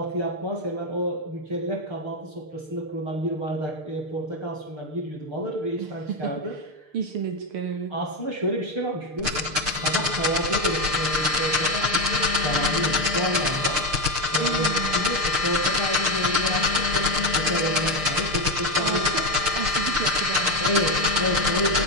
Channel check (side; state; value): left; late; 6.6 ms